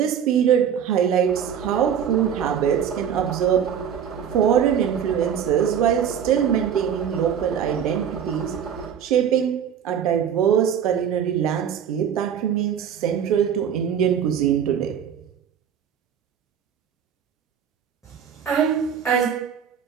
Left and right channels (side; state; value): left; quieter; 8.4 dB